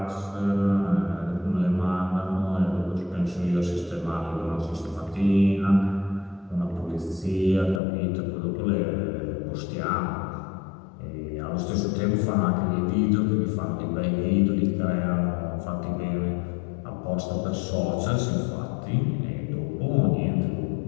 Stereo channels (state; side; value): drops out; right; at 7.8 s